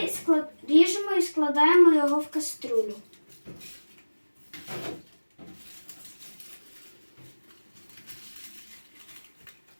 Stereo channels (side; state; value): both; inverted; correlation -1.00